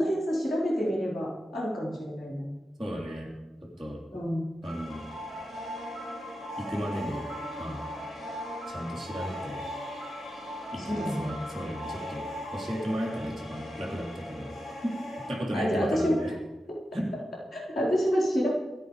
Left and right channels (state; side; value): normal; both; correlation 0.90